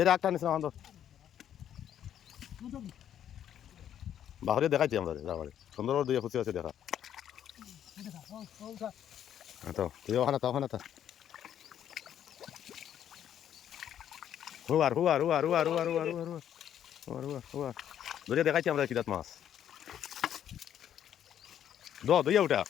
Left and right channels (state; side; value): quieter; right; 10.1 dB